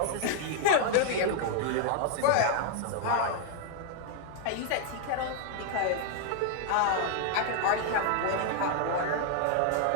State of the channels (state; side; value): different; both; correlation 0.00